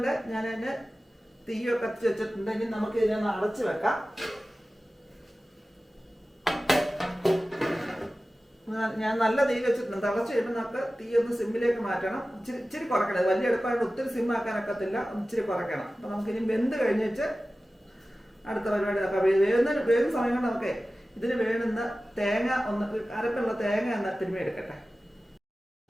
ഞാനതിൻ്റെ തീയൊക്കെ കത്തിച്ച് വെച്ചിട്ടുണ്ട്. ഇനി നമുക്ക് ഇതിനൊന്ന് അടച്ച് വെക്കാം. ഞാൻ നല്ല തീ വെച്ചിട്ടുണ്ട്. തിളച്ച് കഴിയുമ്പോൾ നമുക്ക് തീ ഒന്ന് സിമ്മിലേക്ക് മാറ്റണം. ഇച്ചിരി കുറയ്ക്കണം. വലിയ അടുപ്പായിട്ട് ഒത്തിരി സിമ്മാക്കാനൊക്കത്തില്ല. ഇച്ചിരി കുറയ്ക്കണം. അപ്പോൾ നമുക്കിനി വെന്ത് കഴിഞ്ഞിട്ട് അടുത്ത പരിപാടി നോക്കാം. വേകുന്ന സമയം കൊണ്ട് നമുക്ക് ഇതിന് വേണ്ടുന്ന തേങ്ങ ഒന്ന് അരപ്പുള്ള തേങ്ങ ഒന്ന് തിരുമ്മി എടുക്കട്ടെ.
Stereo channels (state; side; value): normal; both; correlation 0.96